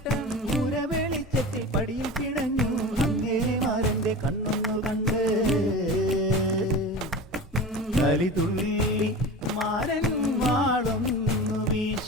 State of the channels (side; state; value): both; normal; correlation 0.31